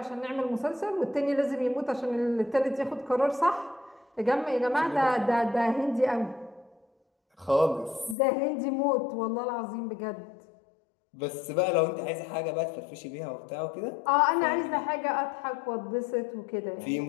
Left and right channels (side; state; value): right; drops out; at 8.2 s